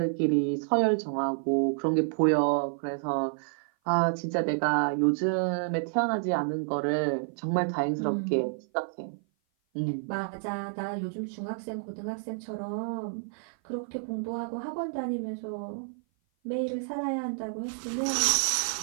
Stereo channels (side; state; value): left; silent; 55 dB below the other